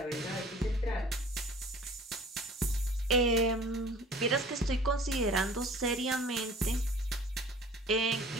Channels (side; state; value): both; normal; correlation 0.47